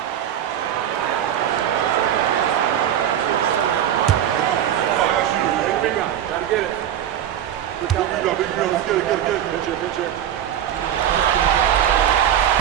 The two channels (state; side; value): quieter; left; 10.4 dB